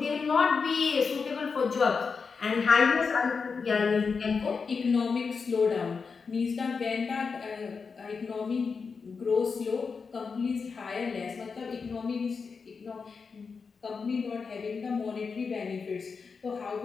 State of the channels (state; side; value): quieter; right; 5.2 dB